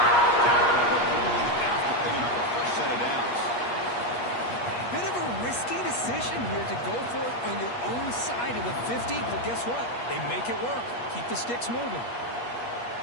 only after picking up a fresh set of downs. Bit of a risky decision here to go for it on your own side of the 50, but guess what? They make it work. Keep the sticks moving.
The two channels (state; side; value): late; right; 8.4 ms